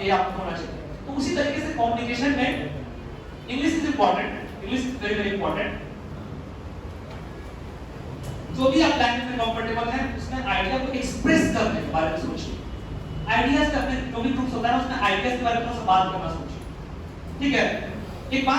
ये आपको होना चाहिए। तो उसी तरीके से कम्युनिकेशन में English is important, English is very very important. जो भी आप लैंग्वेज में कंफर्टेबल हैं उसमें आइडिया को एक्सप्रेस करने के बारे में सोचिए। आइडियाज का अपने जो भी ग्रुप्स होता है उसमें आइडियाज के बारे में थोड़ा सा बात करना सोचिए, ठीक है? एक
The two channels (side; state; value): both; identical; correlation 1.00